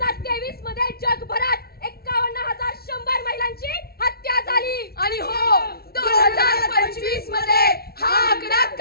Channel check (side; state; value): right; late; 0.45 ms